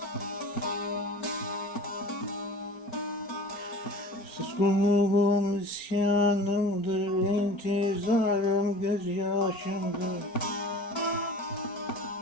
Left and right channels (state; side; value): late; right; 5.3 ms